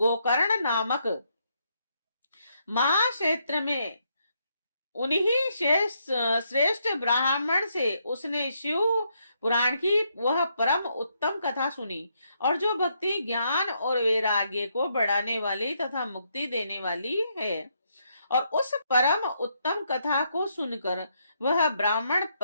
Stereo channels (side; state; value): both; inverted; correlation -0.76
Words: नामक महाक्षेत्र में उन्हीं श्रेष्ठ ब्राह्मण से उसने शिव पुराण की वह परम उत्तम कथा सुनी और जो भक्ति, ज्ञान और वैराग्य को बढ़ाने वाली तथा मुक्ति देने वाली है। और उस परम उत्तम कथा को सुनकर वह ब्राह्मण